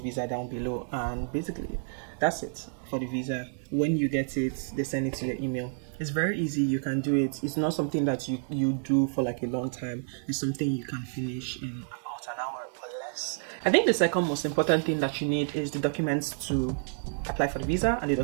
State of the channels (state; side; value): silent; left; digital silence